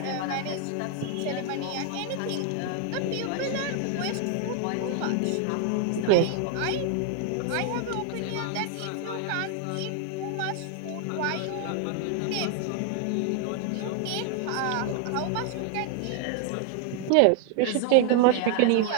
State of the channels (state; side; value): different; both; correlation 0.00